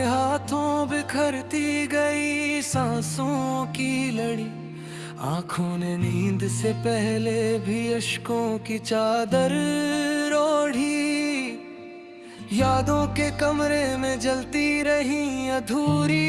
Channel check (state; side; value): identical; both; correlation 1.00